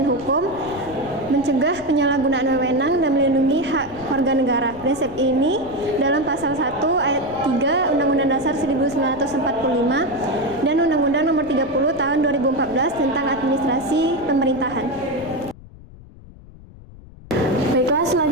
hukum, mencegah penyalahgunaan wewenang, dan melindungi hak warga negara. Prinsip ini dalam pasal 1 ayat 3 Undang-Undang Dasar 1945 dan Undang-Undang Nomor 30 Tahun 2014 tentang administrasi pemerintahan. Baiklah,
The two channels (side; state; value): left; noise; rumble, 20 dB below the sound